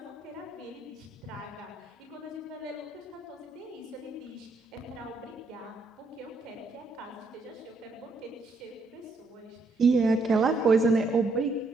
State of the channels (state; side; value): quieter; left; 3.2 dB